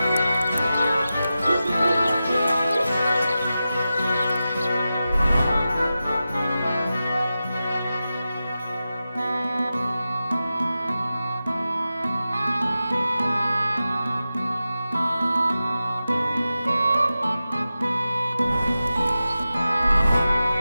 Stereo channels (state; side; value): inverted; both; correlation -0.93